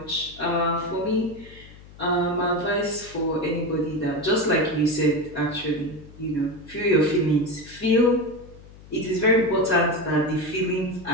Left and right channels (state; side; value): noise; left; hum, 20 dB below the sound